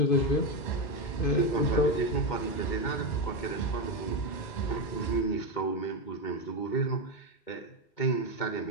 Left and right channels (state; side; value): late; right; 2.2 ms